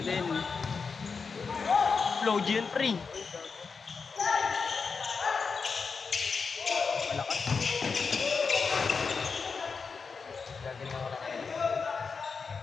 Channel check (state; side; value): quieter; right; 5.1 dB